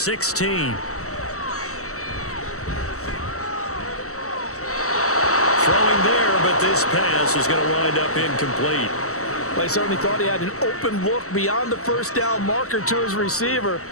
Throwing there, but this pass is going to wind up incomplete. I certainly thought he had an open look beyond the 1st down marker to his receiver,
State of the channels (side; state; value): right; late; 0.64 ms